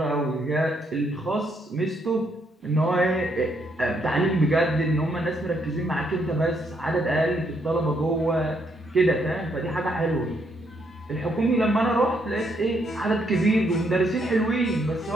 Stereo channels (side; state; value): both; normal; correlation 0.74